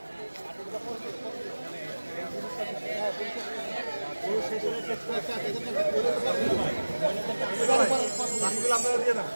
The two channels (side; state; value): both; inverted; correlation -1.00